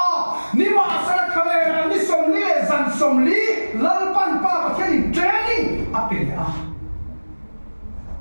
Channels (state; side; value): inverted; both; correlation -1.00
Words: ni mà sẽ khá là ni sông lý dàn sông lý lal pan pa bát thiên training apel à